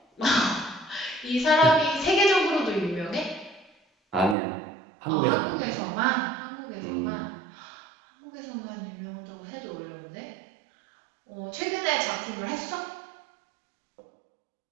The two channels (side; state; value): left; drops out; at 4.4 s